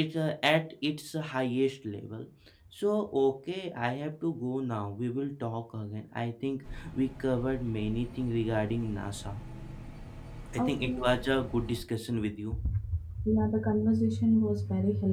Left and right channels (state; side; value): identical; both; correlation 1.00